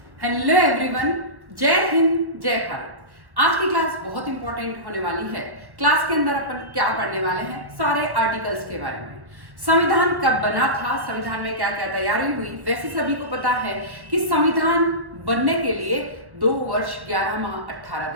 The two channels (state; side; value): late; left; 1.1 ms